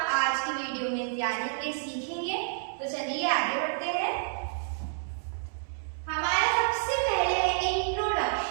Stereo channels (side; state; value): left; silent; 58 dB below the other